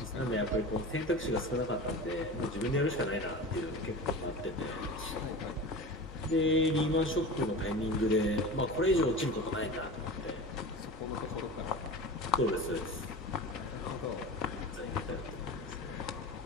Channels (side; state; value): both; normal; correlation 0.32